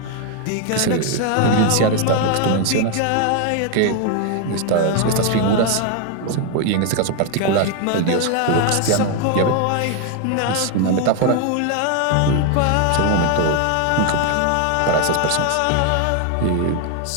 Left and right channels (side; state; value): both; different; correlation 0.01